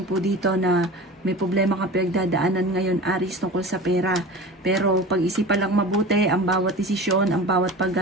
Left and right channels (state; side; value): normal; both; correlation 0.35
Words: po dito na may problema kang pinagdadaanan ngayon, Aries, tungkol sa pera. Pero pag-isipan lang mabuti, ang bawat desisyon, ang bawat